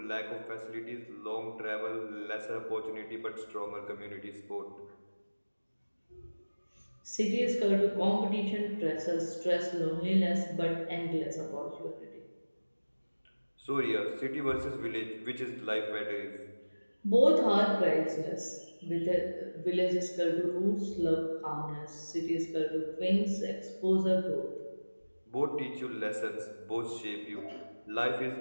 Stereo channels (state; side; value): inverted; both; correlation -1.00